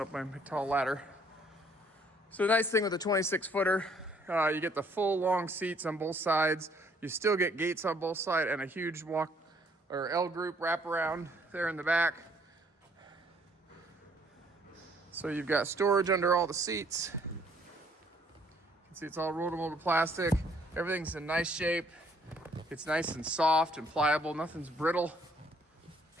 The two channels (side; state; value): both; normal; correlation 0.63